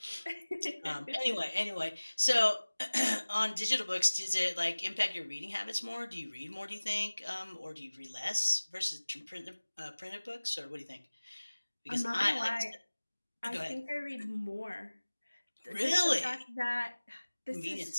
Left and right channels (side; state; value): both; inverted; correlation -1.00